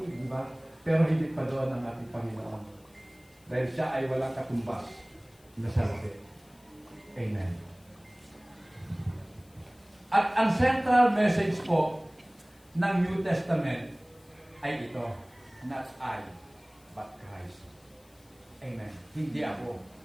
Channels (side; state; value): left; noise; hiss, 29 dB below the sound